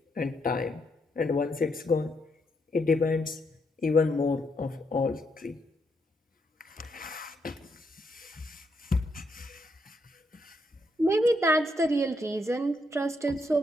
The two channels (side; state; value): both; normal; correlation 0.77